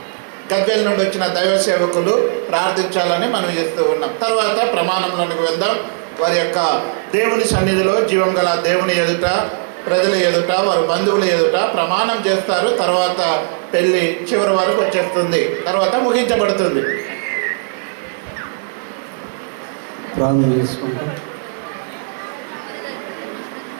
గద్వేల్ నుండి వచ్చిన దైవ సేవకులు ప్రార్థించాలని మనం చేస్తూ ఉన్నాం. తర్వాత ప్రమాణంలోనికి వెళ్దాం. వారి యొక్క దేవుని సన్నిధిలో జీవం గల దేవుని ఎదుట, ప్రజల ఎదుట, వారి బంధువుల ఎదుట ప్రమాణం చేస్తారు. తర్వాత పెళ్ళి చివరి వరకు వచ్చేస్తుంది, తర్వాత ముగించబడుతుంది. ప్రార్థన చేసుకుంటాం.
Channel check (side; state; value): left; silent; 68 dB below the other